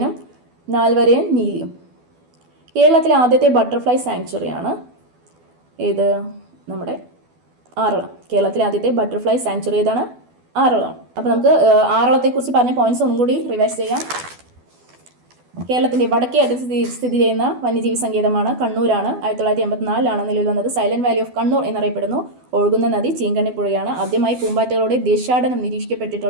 നാൽവരയൻ നീലിയും. കേരളത്തിലെ ആദ്യത്തെ ബട്ടർഫ്ലൈ സാങ്ച്വറിയാണ് ഏത്? നമ്മുടെ ആറളം. കേരളത്തിലെ ആദ്യത്തെ ബട്ടർഫ്ലൈ സാങ്ച്വറി ഏതാണ്? ആറളമാണ്. അപ്പോൾ നമുക്ക് ആറളത്തെക്കുറിച്ച് പറഞ്ഞ പോയിന്റ്സ് ഒന്നും കൂടി റിവൈസ് ചെയ്യാം. കേരളത്തിൻ്റെ വടക്കേ അറ്റത്ത് സ്ഥിതി ചെയ്യുന്ന വന്യജീവി സങ്കേതമാണ് കണ്ണൂരാണ്. 1984-ലാണ് നിലവിൽ വന്നത്. സൈലന്റ് വാലി ഓഫ് കണ്ണൂർ എന്നറിയപ്പെടുന്നു. ഒഴുകുന്ന നദി ചീങ്കണ്ണിപ്പുഴയാണ്. ആദ്യമായി പൂമ്പാറ്റകളുടെ ദേശാടനം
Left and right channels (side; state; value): left; late; 12 ms